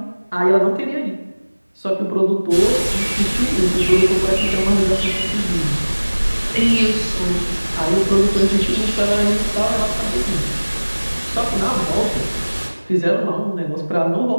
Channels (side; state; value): both; inverted; correlation -1.00